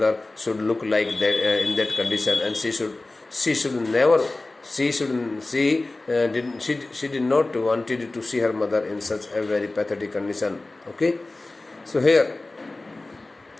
should look like that in that condition, and she did not wanted to see her mother in such a very pathetic condition. Okay, so here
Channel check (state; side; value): quieter; right; 3.0 dB